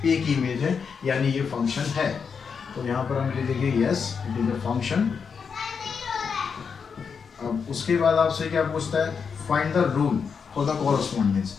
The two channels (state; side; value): quieter; right; 6.1 dB